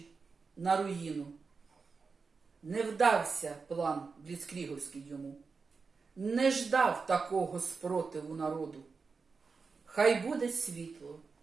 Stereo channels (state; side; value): quieter; left; 4.8 dB